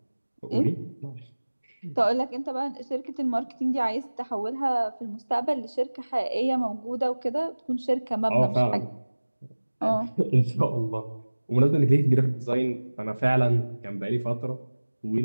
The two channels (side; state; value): both; inverted; correlation -1.00